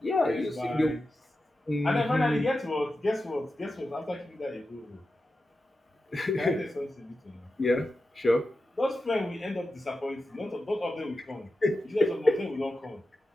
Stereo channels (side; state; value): both; normal; correlation 0.91